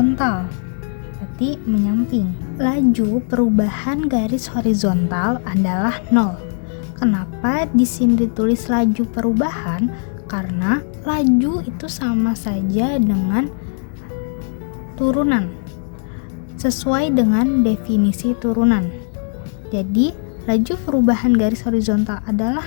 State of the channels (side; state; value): right; silent; 67 dB below the other